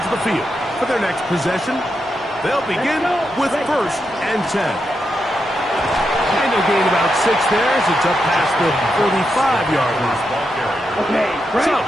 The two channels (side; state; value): both; normal; correlation 0.85